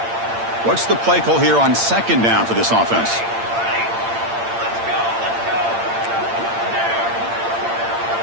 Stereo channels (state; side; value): late; left; 8.8 ms